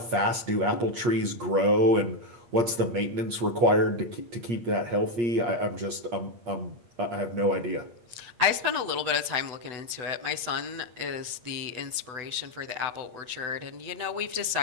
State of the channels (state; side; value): late; left; 8.6 ms